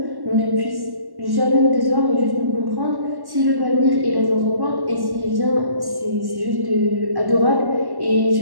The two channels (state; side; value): late; left; 1.1 ms